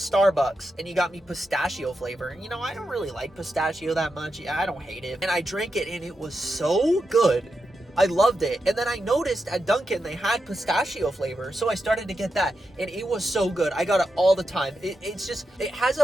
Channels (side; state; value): both; normal; correlation 0.87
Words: and he got me pistachio flavor. And you know, I don't really like pistachio that much. Yeah, I don't hate it. And I drank it and it was so good. I loved it. And then I noticed at Dunkin' they had pistachio flavor, so I started to get that, and it was so good. I got it all the time. It's just, it has a